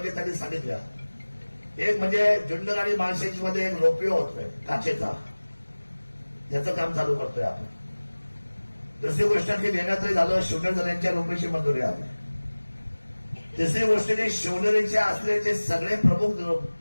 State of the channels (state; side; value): inverted; both; correlation -1.00